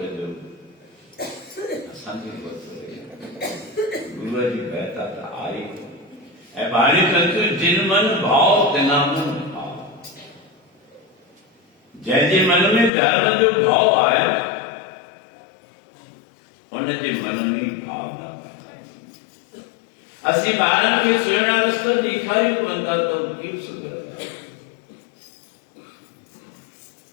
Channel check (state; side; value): drops out; right; at 12.9 s